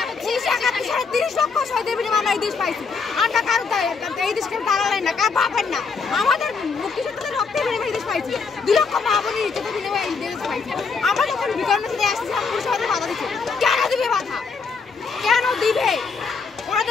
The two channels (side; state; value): right; quieter; 5.0 dB